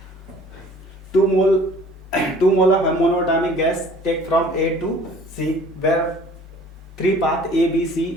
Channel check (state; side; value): normal; both; correlation 0.51